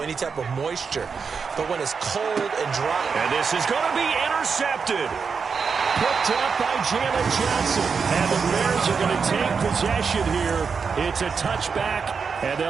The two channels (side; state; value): left; quieter; 5.6 dB